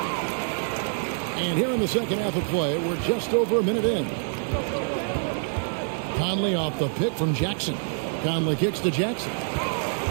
And here in the second half of play, we're just over a minute in. Conley off the pick from Jackson. Conley kicks to Jackson.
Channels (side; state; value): left; silent; 61 dB below the other